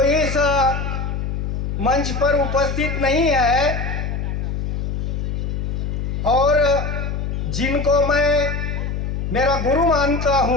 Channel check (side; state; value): left; noise; hum, 2 dB below the sound